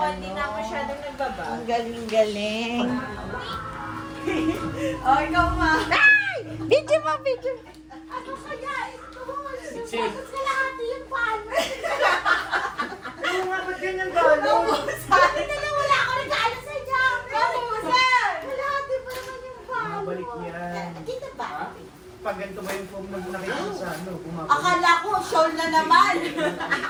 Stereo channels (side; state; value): both; identical; correlation 1.00